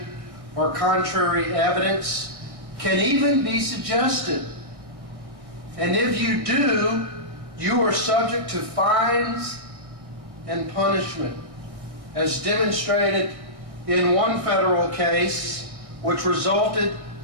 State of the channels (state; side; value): late; left; 1.6 ms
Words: or contrary evidence can even be suggested. And if you do, you are subject to fines and punishment, as demonstrated in one federal case, which resulted